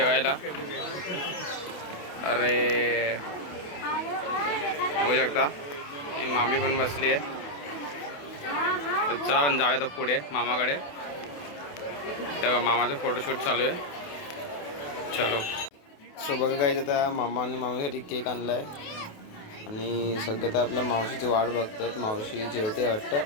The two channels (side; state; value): right; late; 28 ms